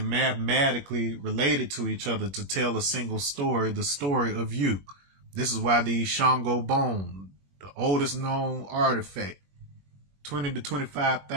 mathematically related to each other to tell a single story, the story of you. This is why the Shango bone, the oldest known artifact, 20 to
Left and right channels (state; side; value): late; left; 21 ms